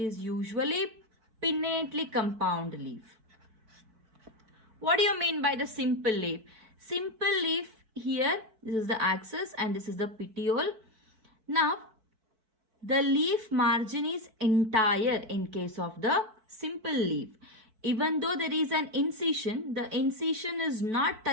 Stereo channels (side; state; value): left; late; 4.5 ms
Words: usually pinnately compound leaf. What do you mean by the simple leaf? Simple leaf here, this is the axis and this is the petiole. Now the leaf margin is entire in case of the simple leaf. Even though there is an incision, the incision is not